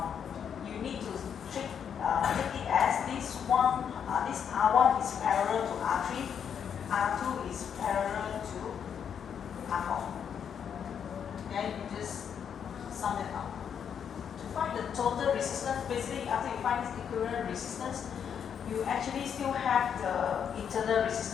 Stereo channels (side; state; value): right; quieter; 7.9 dB